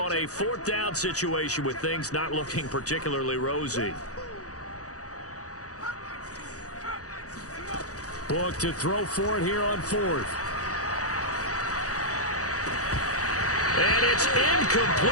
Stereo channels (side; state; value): right; late; 0.66 ms